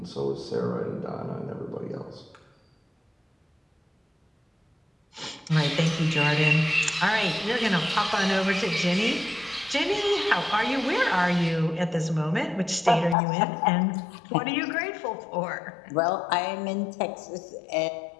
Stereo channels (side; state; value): right; drops out; at 13.2 s